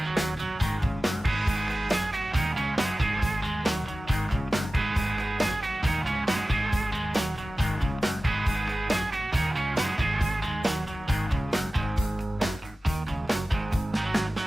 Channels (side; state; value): both; normal; correlation 0.96